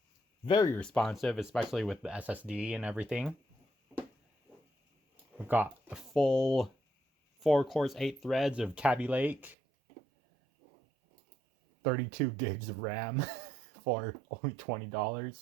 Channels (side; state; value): left; drops out; at 9.6 s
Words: very responsive, especially with the SSD and everything. We've got a full 4 cores, 8 threads of Kaby Lake, 32 gigs of RAM for only